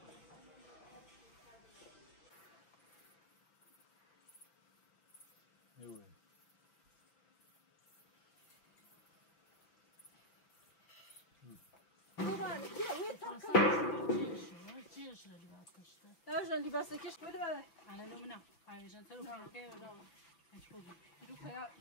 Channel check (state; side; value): late; right; 6.0 ms